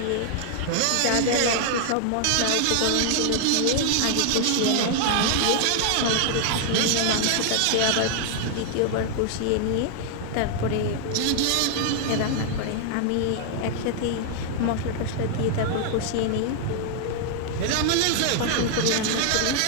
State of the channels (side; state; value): both; different; correlation 0.00